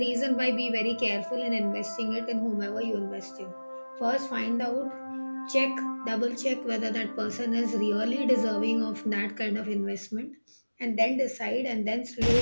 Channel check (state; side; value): inverted; both; correlation -1.00